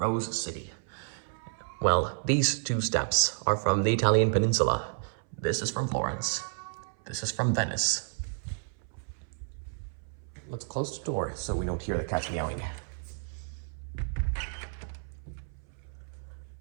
City. Well, these two steps are from the Italian peninsula. This is from Florence. This is from Venice. Let's close the door so we don't hear the cats meowing.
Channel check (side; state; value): left; silent; 57 dB below the other